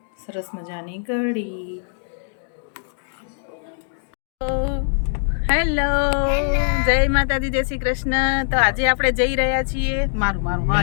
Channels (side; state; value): right; silent; digital silence